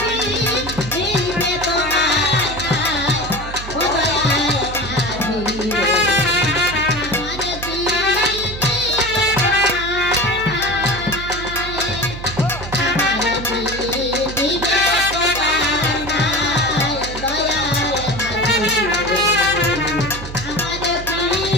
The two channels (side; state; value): right; noise; hum, 10 dB below the sound